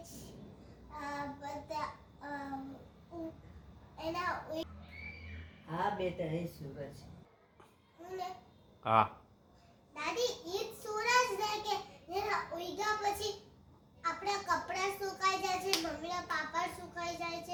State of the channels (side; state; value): both; identical; correlation 1.00